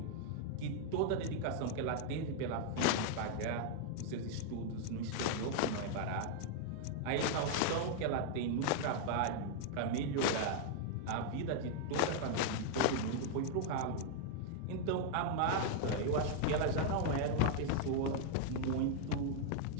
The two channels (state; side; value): different; both; correlation 0.00